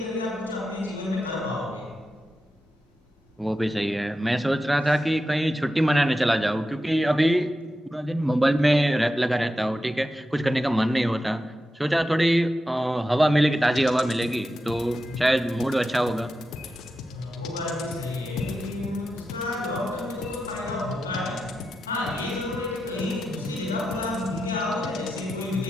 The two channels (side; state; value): both; normal; correlation 0.89